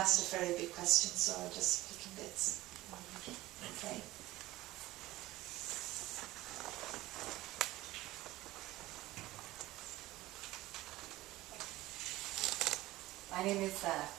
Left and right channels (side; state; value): left; quieter; 17.5 dB